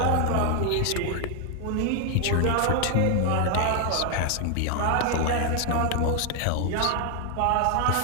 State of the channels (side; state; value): both; different; correlation 0.00